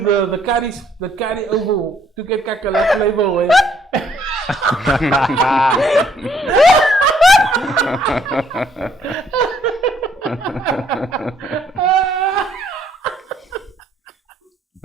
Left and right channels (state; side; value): normal; both; correlation 0.66